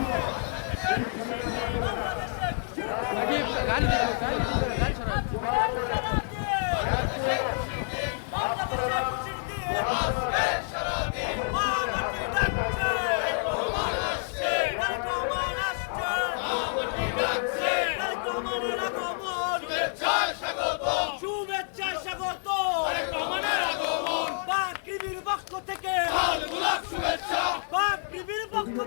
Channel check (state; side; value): silent; right; 59 dB below the other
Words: গাড়ি সরাও। শুভেচ্ছা স্বাগত বাকৃবির পক্ষ থেকে শুভেচ্ছা বাকৃবির পক্ষ